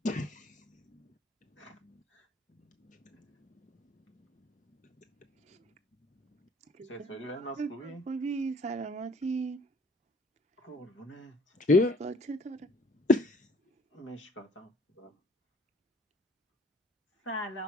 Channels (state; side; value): normal; both; correlation 0.56